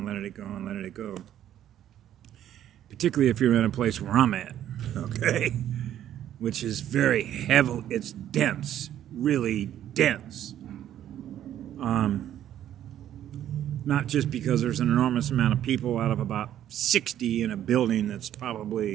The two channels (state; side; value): quieter; left; 11.3 dB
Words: letting it go and letting it go. Particularly if you're in a place where I'm at, okay? Which is very heavy, it's dense, really dense. Not just because there's an enormous amount of people out of about 60 in a building that's